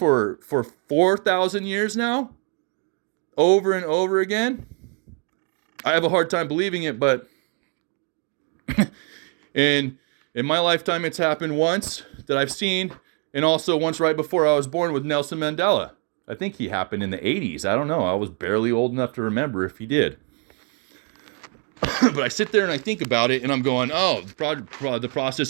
4,000 years now? Over and over again? I have a hard time believing it, but in my lifetime it's happened once that I've seen, and also once right before I was born with Nelson Mandela. I think he happened in the 80s. I don't know. I was barely old enough to remember if he did. But I sit there and I think about it, and I'm going, oh, the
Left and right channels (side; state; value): left; quieter; 38.3 dB